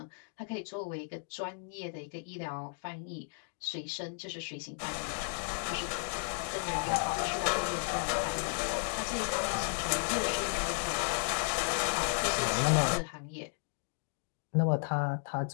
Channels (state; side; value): silent; right; 55 dB below the other